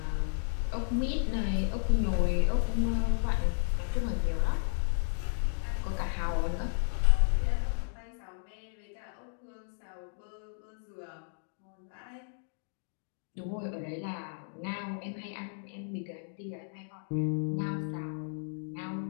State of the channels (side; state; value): right; silent; digital silence